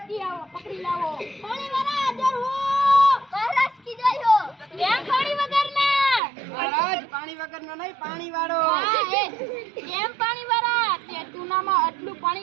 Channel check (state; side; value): drops out; left; at 6.2 s